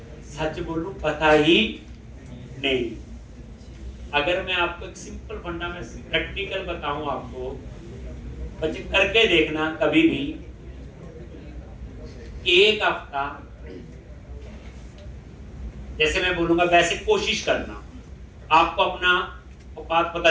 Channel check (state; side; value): identical; both; correlation 1.00